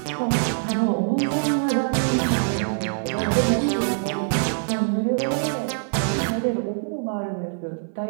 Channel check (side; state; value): left; silent; 59 dB below the other